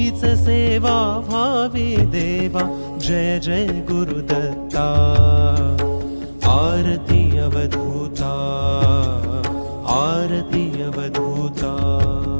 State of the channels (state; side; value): inverted; both; correlation -1.00